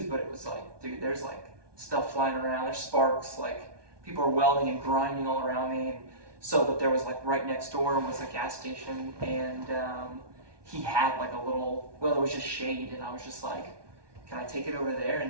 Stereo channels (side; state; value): left; late; 1.2 ms